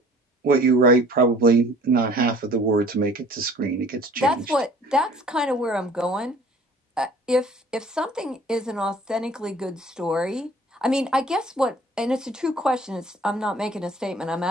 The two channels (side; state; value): both; normal; correlation 0.51